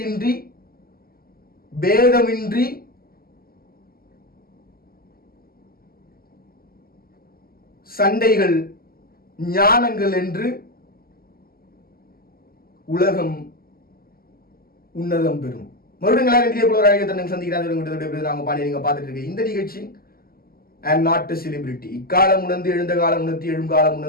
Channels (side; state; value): right; late; 0.43 ms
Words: பேதமின்றி சண்டைகள் ஞானங்கள் என்று உலகம் உன்னதம் பெறும். மறுபடியும் சந்திக்கிறாங்க. நாங்க பாடி நீங்க பார்த்துட்டு இருக்க இந்த நிகழ்ச்சி அண்ட் நாட் செலிபிரிட்டி. இக்காலம் உணர்ந்து எழுந்த காலம் உணர்த்தி எழும் காலம்